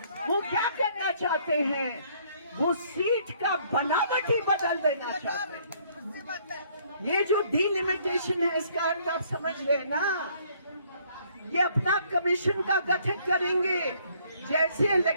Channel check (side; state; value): both; inverted; correlation -0.63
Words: वो क्या करना चाहते हैं? वो सीट का बनावट ही बदल देना चाहते हैं। ये जो डिलिमिटेशन है, इसका अर्थ आप समझ रहे ना? ये अपना कमीशन का गठन करेंगे। जैसे